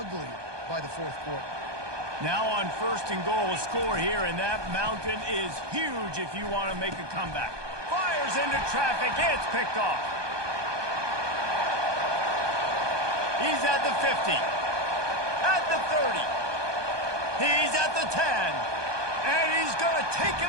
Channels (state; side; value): late; left; 1.2 ms